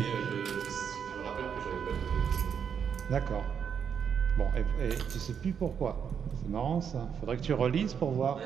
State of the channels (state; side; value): quieter; left; 7.5 dB